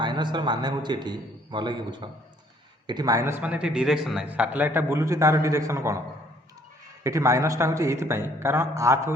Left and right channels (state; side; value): normal; both; correlation 0.62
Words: मान हूँ ये भल कि बुझ ये माइनस मान ये डिरेक्शन ना सैटेलाइटा बुलूची तार डिरेक्शन कौन ये माइनसटा हूँ ये कारण आर्थ हूँ